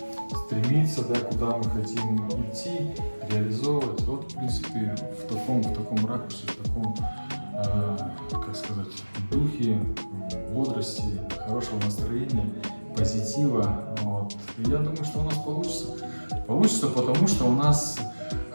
стремиться, да, куда мы хотим идти, реализовывать. Вот, в принципе, в таком ракурсе, в таком, как сказать, духе, бодрости, хорошего настроения, позитива. Вот. И я думаю, что у нас получится. Получится, потому что у нас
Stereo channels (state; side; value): inverted; both; correlation -1.00